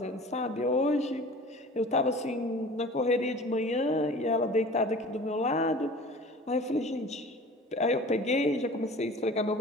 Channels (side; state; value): both; normal; correlation 0.42